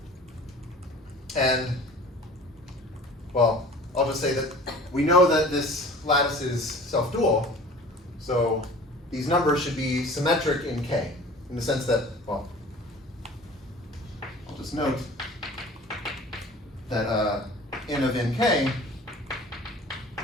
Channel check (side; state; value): both; normal; correlation 0.44